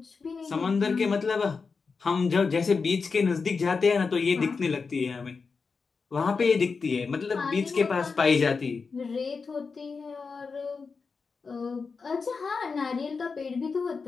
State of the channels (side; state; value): right; quieter; 4.9 dB